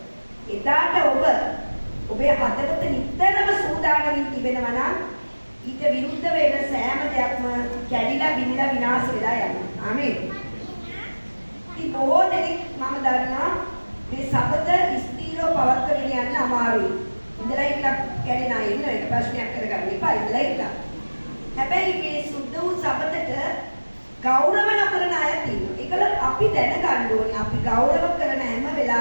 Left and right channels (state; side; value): inverted; both; correlation -1.00